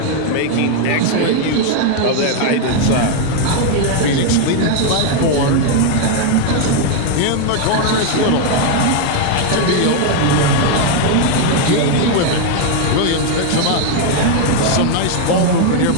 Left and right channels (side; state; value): both; different; correlation 0.00